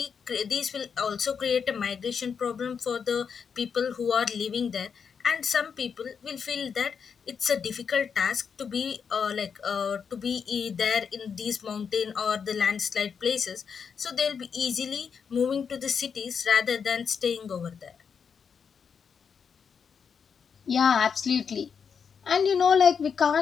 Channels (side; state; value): right; quieter; 6.5 dB